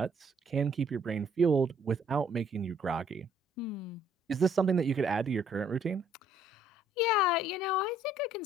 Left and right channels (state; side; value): normal; both; correlation 0.64